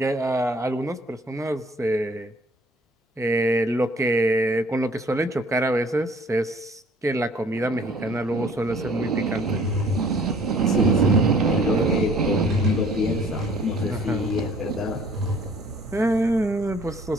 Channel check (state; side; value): normal; both; correlation 0.55